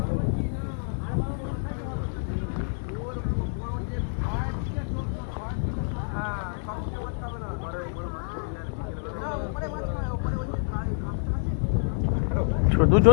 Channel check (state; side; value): silent; right; digital silence